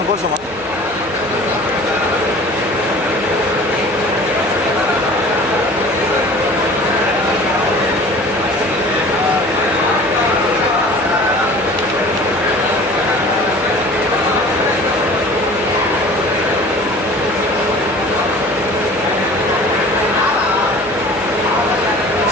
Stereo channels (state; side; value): noise; left; hum, 21 dB below the sound